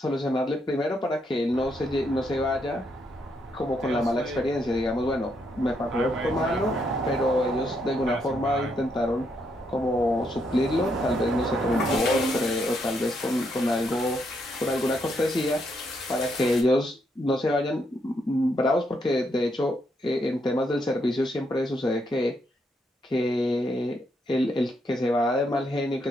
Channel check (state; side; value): normal; both; correlation 0.77